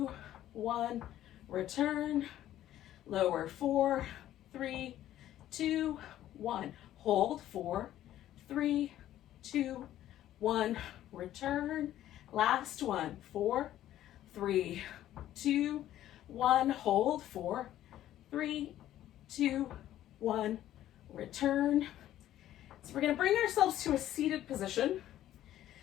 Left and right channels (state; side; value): quieter; right; 12.8 dB